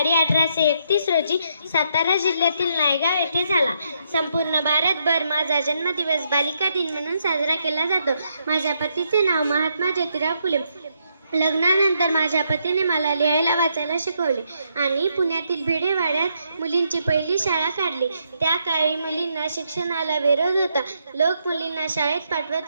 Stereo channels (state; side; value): inverted; both; correlation -0.77